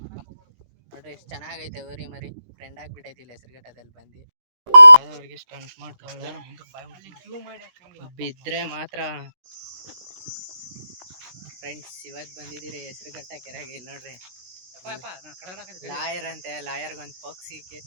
ನೋಡ್ರಿ ಎಷ್ಟು ಚೆನ್ನಾಗೈತೆ ಓರಿ ಮರಿ, ಫ್ರೆಂಡ್ ಆಗ್ಬಿಟ್ಟೈತಿ ಇಲ್ಲಿ ಹೆಸರುಘಟ್ಟದಲ್ಲಿ ಬಂದು. ಅವ್ರಿಗೆ ಸ್ಟಂಟ್ ಮಾಡ್ತಾಳೆ, ಬಿದ್ರೆ ಮಾತ್ರ. ಫ್ರೆಂಡ್ಸ್ ಇವತ್ತು ಬಂದಿದ್ದೀರಿ ಹೆಸರುಘಟ್ಟ ಕೆರೆಗೆ. ಇಲ್ಲಿ ನೋಡ್ರಿ ಲಾಯರ್ ಅಂತೆ, ಲಾಯರ್ಗೊಂದು ಪೋಕ್ಸಿ ಕೇಸ್.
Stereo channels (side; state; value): left; late; 16 ms